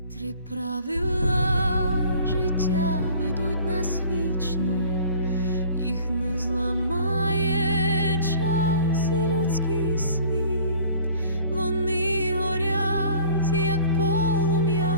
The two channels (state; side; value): inverted; both; correlation -0.49